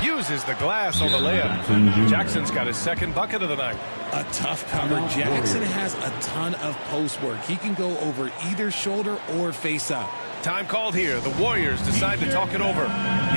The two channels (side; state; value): both; inverted; correlation -1.00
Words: uses the glass on the layup. Jackson's got his 2nd bucket of the night. A tough cover. Jackson has a ton of post work. He can go over either shoulder or face up. Time called here. The Warriors decide to talk it over.